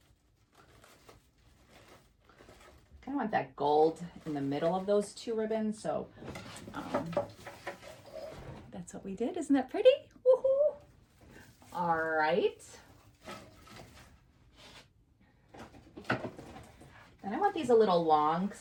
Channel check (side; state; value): both; identical; correlation 1.00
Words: I want that gold in the middle of those two ribbons, so that's what we did. Isn't that pretty? Woohoo! All right. And I want these a little long because